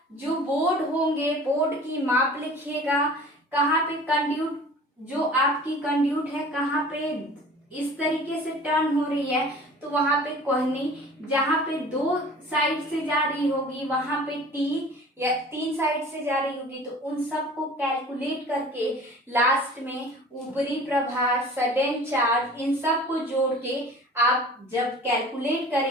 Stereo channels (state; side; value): normal; both; correlation 0.44